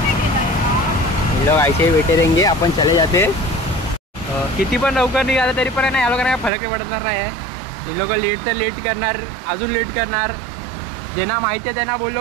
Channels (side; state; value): left; drops out; at 6.5 s